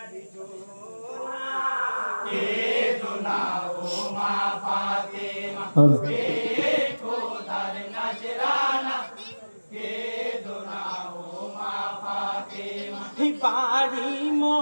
কে দোনাও মা ফাতেমা পেয়ে খোদার নজরানা কে দোনাও মা ফাতেমা। বাড়ি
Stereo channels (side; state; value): both; inverted; correlation -1.00